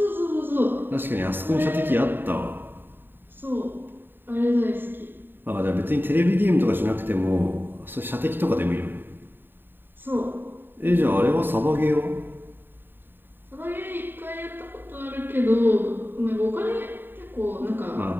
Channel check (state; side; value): late; left; 0.095 ms